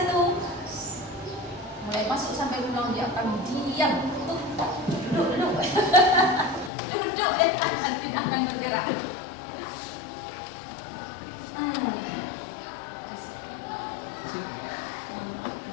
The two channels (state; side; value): drops out; right; at 6.7 s